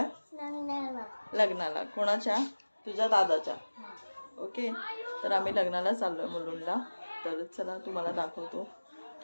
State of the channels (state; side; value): inverted; both; correlation -1.00